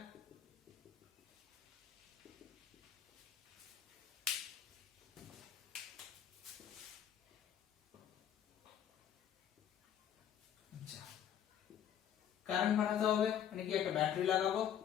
আচ্ছা, কারেন্ট বানাতে হবে, মানে কি একটা ব্যাটারি লাগাবো,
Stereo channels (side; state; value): right; quieter; 9.6 dB